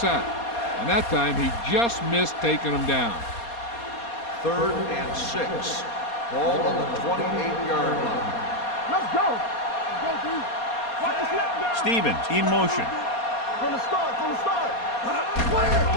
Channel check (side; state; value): right; late; 4.2 ms